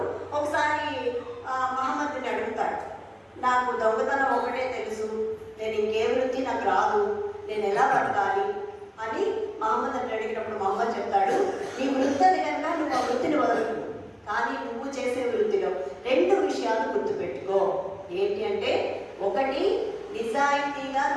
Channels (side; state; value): both; identical; correlation 1.00